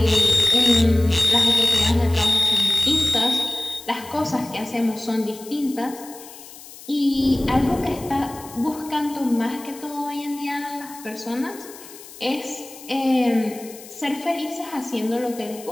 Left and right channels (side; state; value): left; noise; hiss, 17 dB below the sound